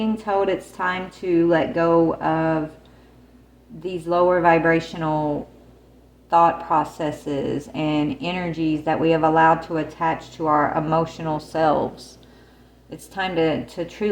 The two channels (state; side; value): identical; both; correlation 1.00